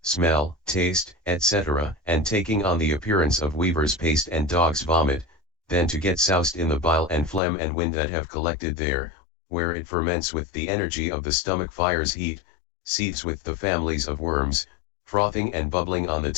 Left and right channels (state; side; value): drops out; right; at 7.4 s